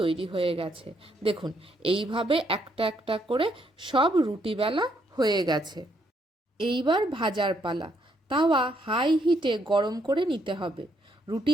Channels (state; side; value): normal; both; correlation 0.73